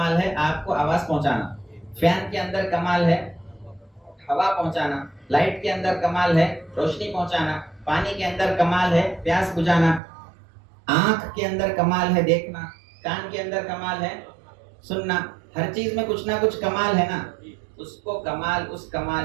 ہے آپ کو آواز پہنچانا، فین کے اندر کمال ہے ہوا پہنچانا، لائٹ کے اندر کمال ہے روشنی پہنچانا، پانی کے اندر کمال ہے پیاس بجھانا، آنکھ کے اندر کمال ہے دیکھنا، کان کے اندر کمال ہے سننا۔ ہر چیز میں کچھ نہ کچھ کمال ہے نا، اس کو کمال، اس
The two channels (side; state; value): left; drops out; at 10.0 s